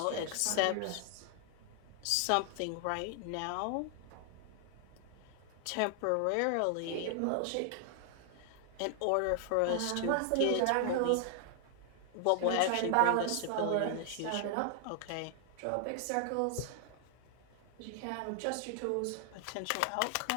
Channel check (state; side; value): different; both; correlation 0.00